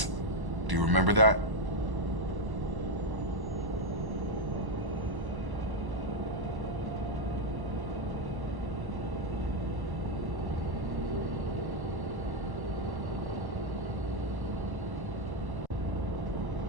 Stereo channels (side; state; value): left; late; 1.0 ms